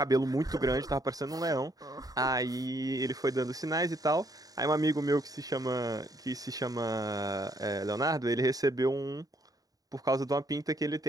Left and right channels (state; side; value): late; left; 0.18 ms